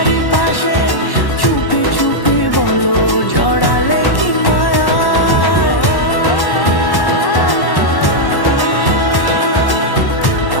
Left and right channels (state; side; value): late; right; 1.1 ms